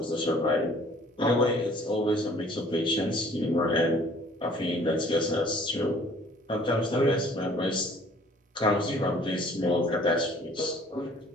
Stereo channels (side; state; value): both; normal; correlation 0.54